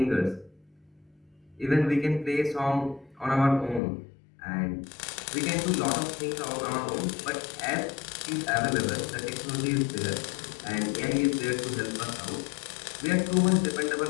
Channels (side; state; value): right; drops out; at 3.8 s